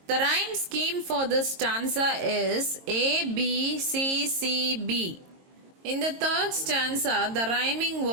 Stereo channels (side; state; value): left; late; 22 ms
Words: The rhyme scheme for this stanza is A, B, C, C, B. In the third stanza, the rhyming